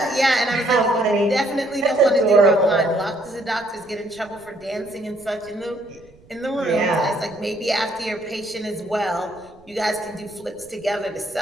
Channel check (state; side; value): noise; right; rumble, 27 dB below the sound